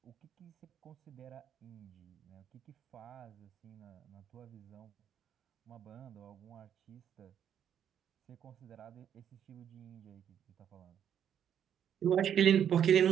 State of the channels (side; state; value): left; quieter; 9.1 dB